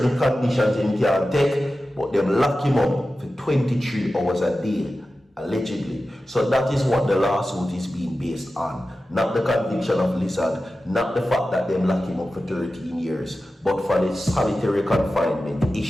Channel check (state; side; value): normal; both; correlation 0.94